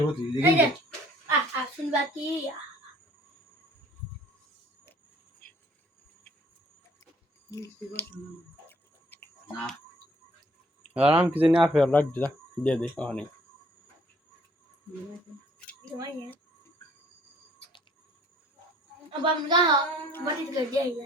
তুই এই এগিয়ে যে দে শুনবা কি না আরাম কি জানি আপে রাখ দে যা দিয়ে দে ওখানে अब हम कहा बड़ी कर दिया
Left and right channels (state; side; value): normal; both; correlation 0.58